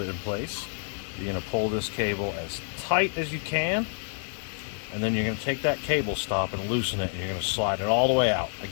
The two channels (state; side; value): silent; right; digital silence